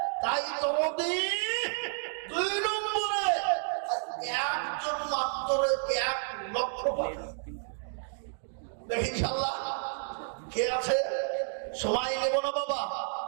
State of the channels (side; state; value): left; silent; digital silence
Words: তাই তোমাদের 2 নম্বরে একজন মাত্র 1 লক্ষ দেখি ইনশাআল্লাহ কে আছে। সময় নেব না বাবা,